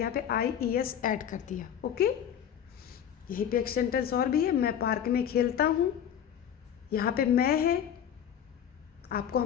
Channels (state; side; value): quieter; right; 9.2 dB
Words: यहाँ पे IES ऐड कर दिया। ओके, यहीं पे एक सेंटेंस और भी है, मैं पार्क में खेलता हूँ, यहाँ पे मैं है, आपको